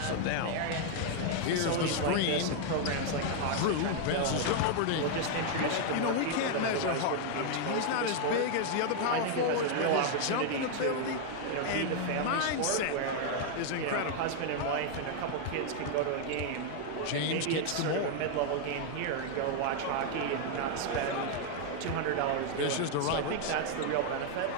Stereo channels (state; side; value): different; both; correlation 0.00